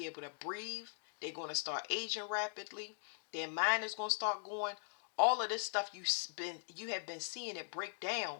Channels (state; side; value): silent; right; digital silence